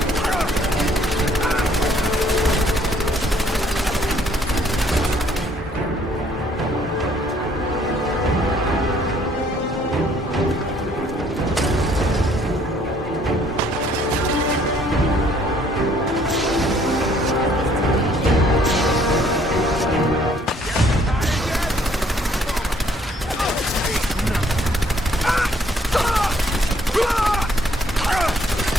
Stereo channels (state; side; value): normal; both; correlation 0.63